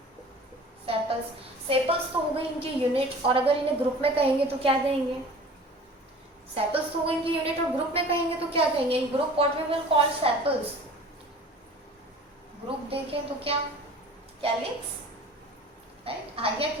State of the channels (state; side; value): normal; both; correlation 0.44